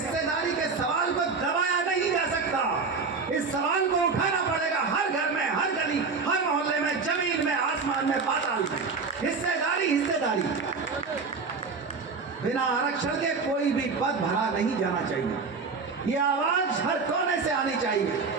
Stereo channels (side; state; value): left; quieter; 4.7 dB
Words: के सवाल को दबाया नहीं जा सकता। इस सवाल को उठाना पड़ेगा हर घर में, हर गली, हर मोहल्ले में, जमीन में, आसमान में, पाताल में। हिस्सेदारी, हिस्सेदारी। बिना आरक्षण के कोई भी पद भरा नहीं जाना चाहिए। ये आवाज हर कोने से आनी चाहिए।